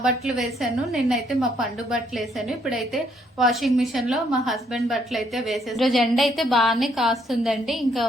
బట్టలు వేసాను, నిన్నైతే మా పండు బట్టలు వేసాను. ఇప్పుడైతే వాషింగ్ మిషన్ లో మా హస్బెండ్ బట్టలు అయితే వేసాను. రోజు ఎండ అయితే బాగానే కాస్తుందండి. ఇంకా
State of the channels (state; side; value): normal; both; correlation 0.69